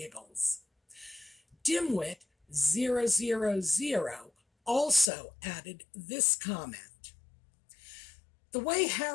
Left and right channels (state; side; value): drops out; right; at 5.1 s